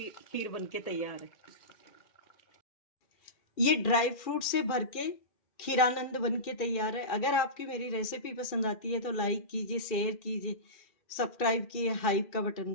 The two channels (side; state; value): right; late; 2.4 ms